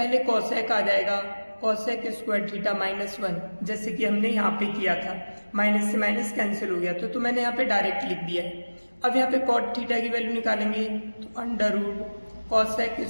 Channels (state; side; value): inverted; both; correlation -1.00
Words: कोसेक आ जाएगा, कोसेक स्क्वायर थीटा -1, जैसे कि हमने यहाँ पे किया था, माइनस से माइनस कैंसिल हो गया तो मैंने यहाँ पे डायरेक्ट लिख दिया है। अब यहाँ पे कॉट थीटा की वैल्यू निकालेंगे तो under root cosec